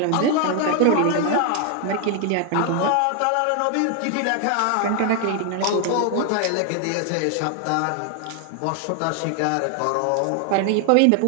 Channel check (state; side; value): different; both; correlation 0.00